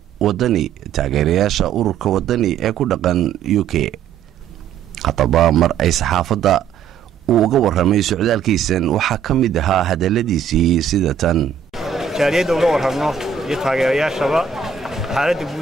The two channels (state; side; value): quieter; left; 7.3 dB